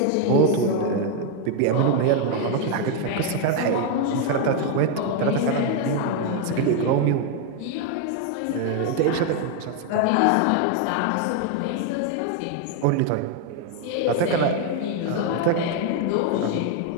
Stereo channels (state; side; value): different; both; correlation 0.01